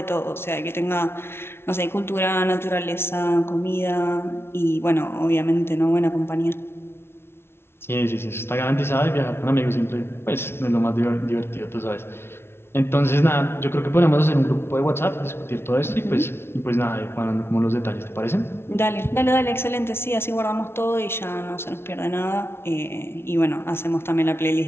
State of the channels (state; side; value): late; right; 0.12 ms